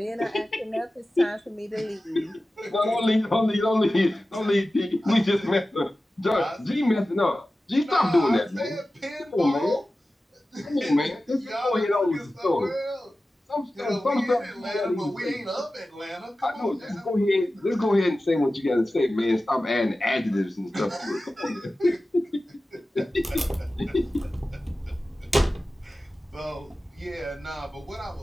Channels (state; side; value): normal; both; correlation 0.95